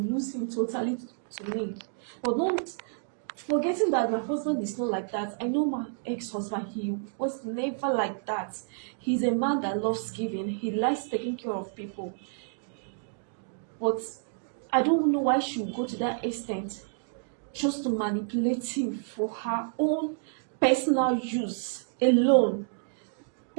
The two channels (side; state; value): left; silent; digital silence